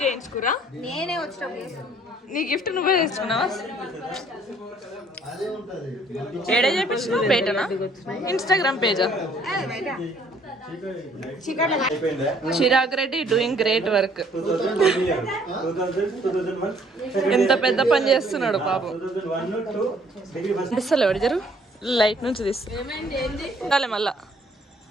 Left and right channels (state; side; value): normal; both; correlation 0.61